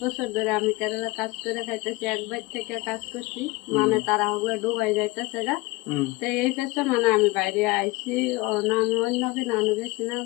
বছর ধরে আমি কেরালা কাজ করে খাইতেছি, একবার থেকে কাজ করছি, মানে তারা হলে ডুবাই যাইতেছে গা। তো এই পেছে মানে আমি বাইরে আইছি, না আমি অন্য কিনা আনো গেছি না,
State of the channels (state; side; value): quieter; right; 22.7 dB